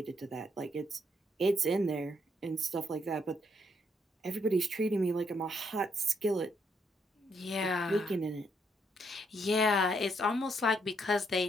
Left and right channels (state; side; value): normal; both; correlation 0.74